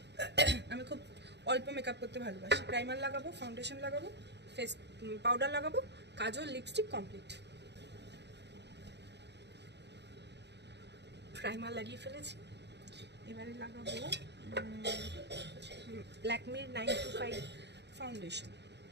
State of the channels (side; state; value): left; late; 0.50 ms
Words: আমি খুব অল্প মেকআপ করতে ভালোবাসি। প্রাইমার লাগাবো, ফাউন্ডেশন লাগাবো, ফেস পাউডার লাগাবো, কাজল, লিপস্টিক কমপ্লিট। প্রাইমার লাগিয়ে ফেলেছি, এবারে লাগাবো ল্যাকমির 925 ফাউন্ডেশন।